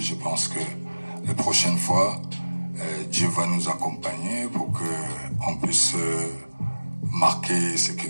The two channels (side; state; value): both; inverted; correlation -1.00